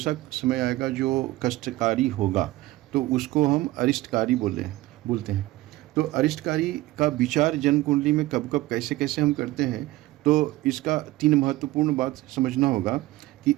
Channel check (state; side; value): quieter; left; 18.0 dB